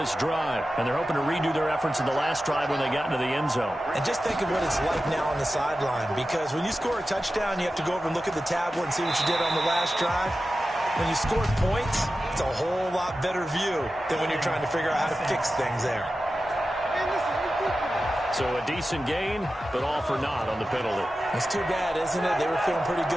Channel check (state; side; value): normal; both; correlation 0.93